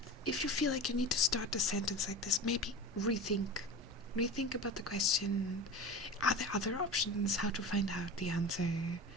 If you feel like you need to start a sentence like this, maybe rethink. Rethink about the question. Are there other options? How to find out the answer?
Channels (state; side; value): noise; right; rumble, 20 dB below the sound